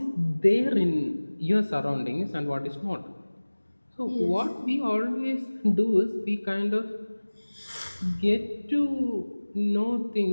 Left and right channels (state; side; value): inverted; both; correlation -1.00